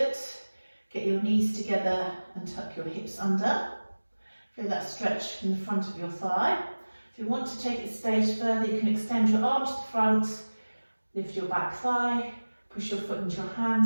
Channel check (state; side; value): inverted; both; correlation -1.00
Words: get your knees together and tuck your hips under. Feel that stretch in the front of your thigh. If you want to take it a stage further, you can extend your arm to the front, lift your back thigh, push your foot into your